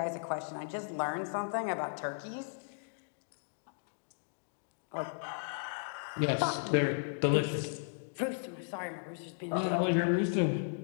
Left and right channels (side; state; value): right; silent; digital silence